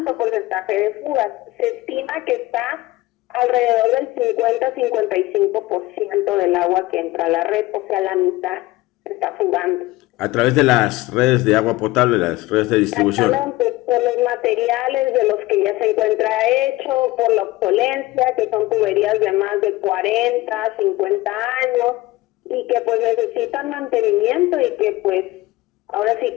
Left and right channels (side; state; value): right; quieter; 19.0 dB